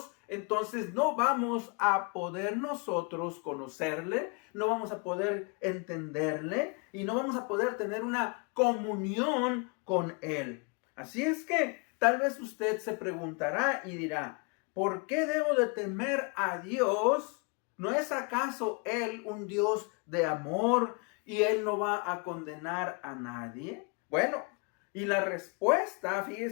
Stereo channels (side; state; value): right; quieter; 33.6 dB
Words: entonces no vamos a poder nosotros conocerle, no vamos a poder entenderle y no vamos a poder tener una comunión con Él. Así es que tal vez usted se preguntará y dirá: ¿por qué debo de temer a Dios? ¿No es acaso Él un Dios de amor y Él no va a condenar a nadie? Bueno, y la respuesta,